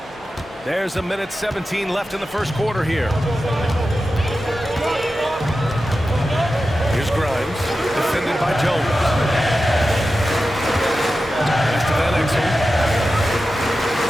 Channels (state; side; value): normal; both; correlation 0.92